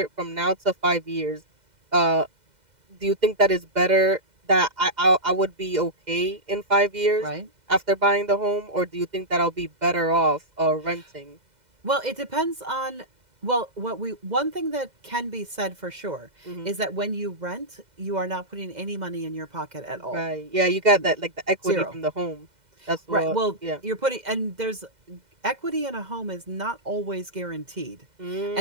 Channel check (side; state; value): left; late; 2.0 ms